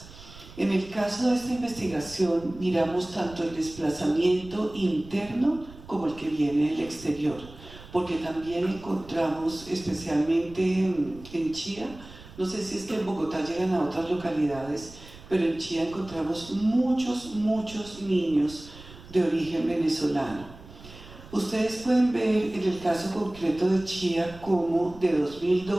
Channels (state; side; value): noise; right; rumble, 18 dB below the sound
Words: En el caso de esta investigación miramos tanto el desplazamiento interno como el que viene del exterior, porque también encontramos, especialmente en Chía, no sé si es que en Bogotá llegan a otras localidades, pero en Chía encontramos muchos niños de origen venezolano. Ustedes pueden ver en el caso concreto de Chía cómo de